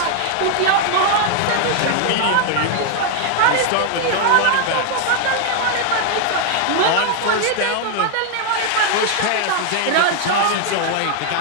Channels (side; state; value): both; different; correlation 0.00